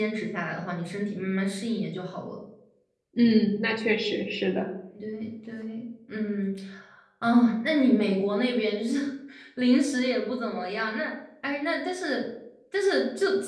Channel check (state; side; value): identical; both; correlation 1.00